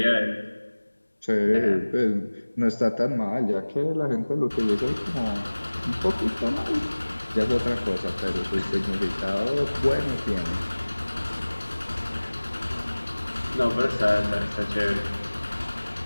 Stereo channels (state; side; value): inverted; both; correlation -1.00